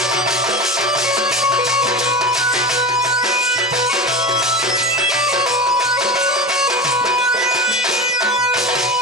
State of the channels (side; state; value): both; normal; correlation 0.26